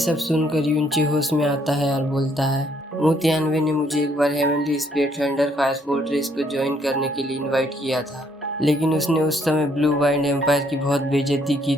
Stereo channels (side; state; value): both; normal; correlation 0.68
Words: सुनकर यूनचे होश में आता है और बोलता है मू तियानवे ने मुझे एक बार heavenly spirit thunder fire fortress को ज्वाइन करने के लिए इनवाइट किया था, लेकिन उसने उस समय ब्लू वाइंड एम्पायर की बहुत बेइज्जती की